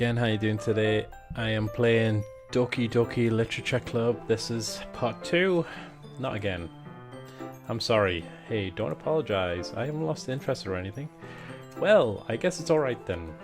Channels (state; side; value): identical; both; correlation 1.00